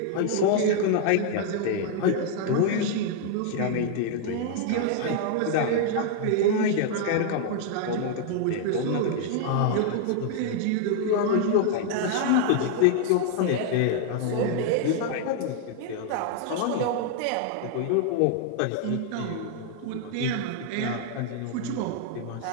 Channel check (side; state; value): both; different; correlation 0.00